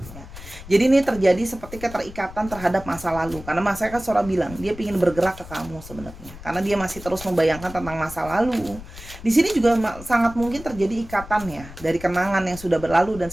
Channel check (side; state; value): left; noise; rumble, 15 dB below the sound